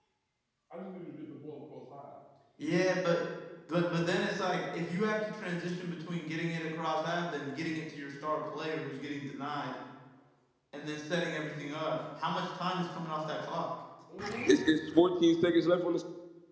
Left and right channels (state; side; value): identical; both; correlation 1.00